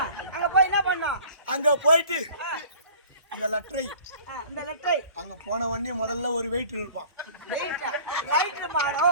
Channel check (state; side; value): inverted; both; correlation -0.47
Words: அங்க போய் என்ன பண்ணோம்? அங்க போயிட்டு இந்த லெட்டரை அங்க போன உடனே முதல்ல ஒரு வெயிட் இருப்பான்.